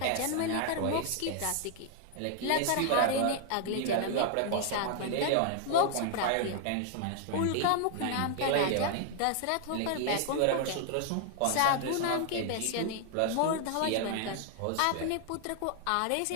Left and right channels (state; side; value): different; both; correlation 0.00